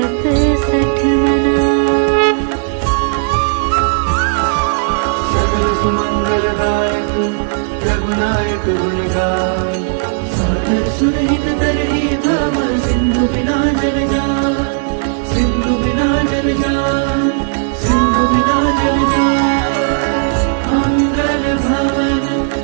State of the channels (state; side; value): silent; left; digital silence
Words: सठ मना। सकल सुमंगलदायक रघुनायक गुण गाय सादर सुरहित तरहि भव सिंधु बिना जल जाय सिंधु बिना जल जाय सिंधु बिना जल जाय। मंगल भवन